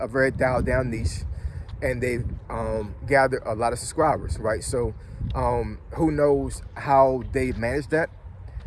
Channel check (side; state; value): both; identical; correlation 1.00